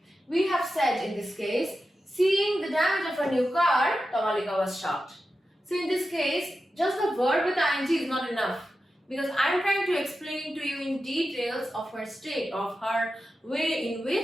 We have said in this case, seeing the damage of a new car, Tamalika was shocked. So in this case, just the verb with ing is not enough, because I'm trying to explain to you in details of her state, of her way in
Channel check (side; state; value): both; normal; correlation 0.91